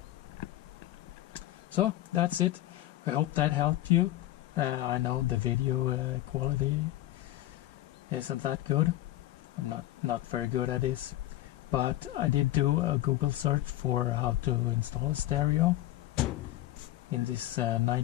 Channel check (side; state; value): right; quieter; 15.4 dB